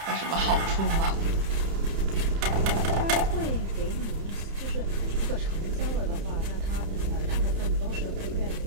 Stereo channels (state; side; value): late; left; 30 ms